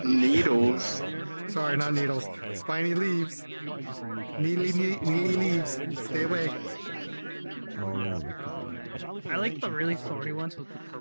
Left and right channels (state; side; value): inverted; both; correlation -1.00